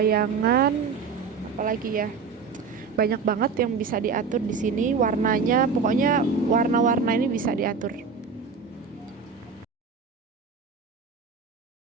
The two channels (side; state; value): left; quieter; 5.4 dB